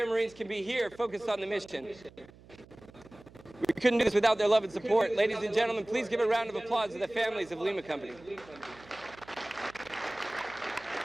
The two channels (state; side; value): noise; right; hum, 23 dB below the sound